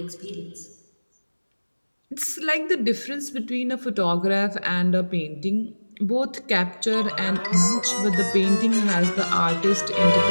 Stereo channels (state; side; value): inverted; both; correlation -1.00